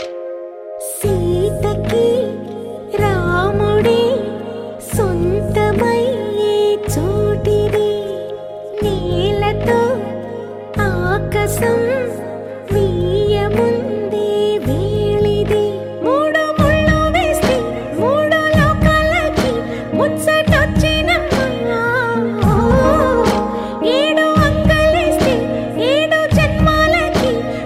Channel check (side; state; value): both; identical; correlation 1.00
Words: సీతకి రాముడే సొంతమయ్యే చోటిది, నేలతో ఆకాశం వీయముందే వేళిది. మూడు ముళ్ళు వేస్తే మూడు లోకాలకి ముచ్చటొచ్చినమ్మా. ఏడు అంగలేస్తే ఏడు జన్మాలకి